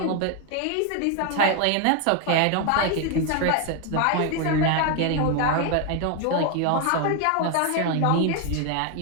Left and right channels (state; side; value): different; both; correlation 0.01